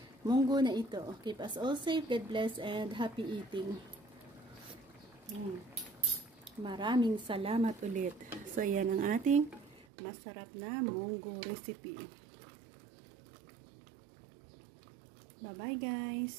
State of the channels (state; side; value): drops out; left; at 9.9 s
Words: munggo na ito. Keep us all safe, God bless, and happy eating. Maraming salamat ulit. So, yan ang ating masarap na munggo recipe. Bye-bye,